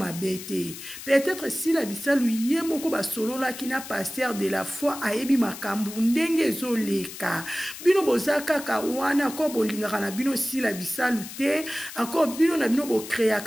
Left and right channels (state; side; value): noise; left; hiss, 12 dB below the sound